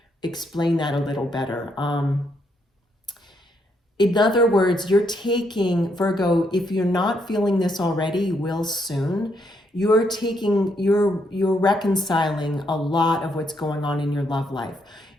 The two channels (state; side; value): normal; both; correlation 0.75